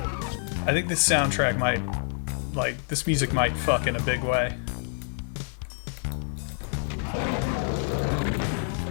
I think this soundtrack might, like, this music might fuck in a big way.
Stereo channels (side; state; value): right; silent; 55 dB below the other